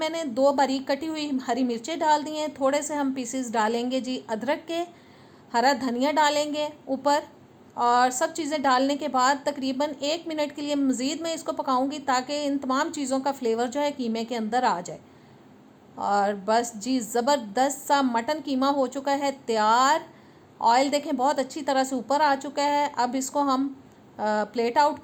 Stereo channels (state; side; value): identical; both; correlation 1.00